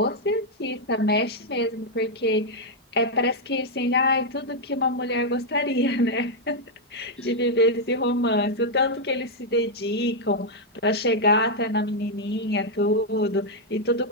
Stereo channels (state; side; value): normal; both; correlation -0.02